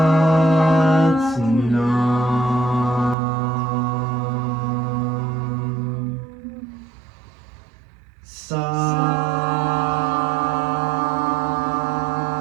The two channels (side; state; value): left; drops out; at 3.2 s